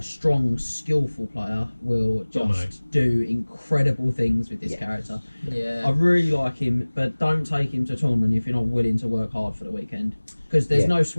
strong, skillful player will just Dominate. do incredible things with this Yeah. character. Yeah. I really like him, but don't take him to a tournament if you're not willing to work hard for the weekend, because there's Yeah. no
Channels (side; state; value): both; inverted; correlation -1.00